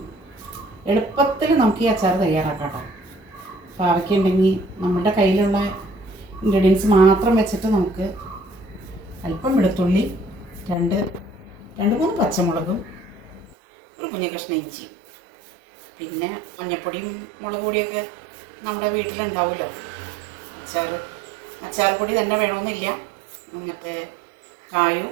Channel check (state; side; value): drops out; left; at 13.6 s